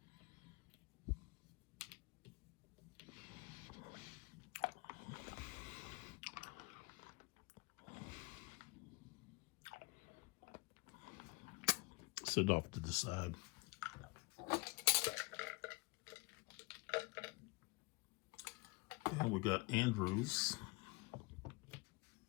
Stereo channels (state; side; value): quieter; right; 25.5 dB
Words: Sit off to the side. And we got Andrews.